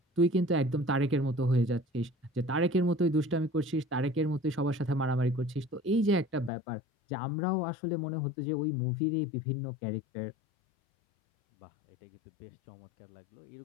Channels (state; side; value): drops out; right; at 6.5 s